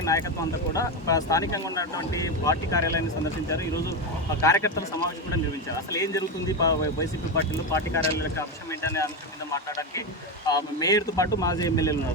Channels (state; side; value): normal; both; correlation 0.13